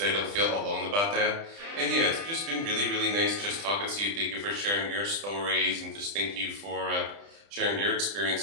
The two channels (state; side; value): late; left; 30 ms